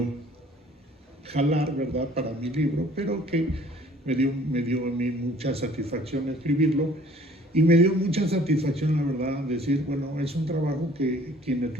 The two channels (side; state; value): both; normal; correlation 0.54